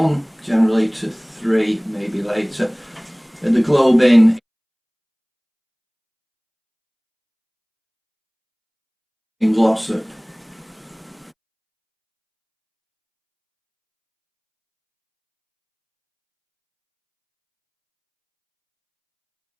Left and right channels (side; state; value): both; identical; correlation 1.00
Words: generally to 3, maybe later, at the Globe Inn in Glossop.